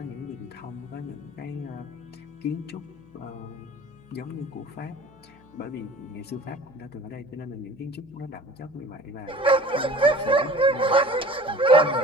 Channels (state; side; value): noise; left; hum, 28 dB below the sound